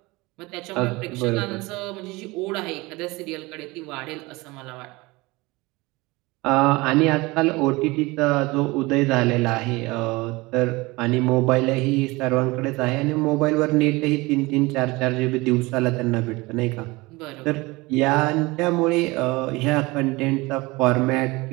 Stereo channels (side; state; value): left; quieter; 22.7 dB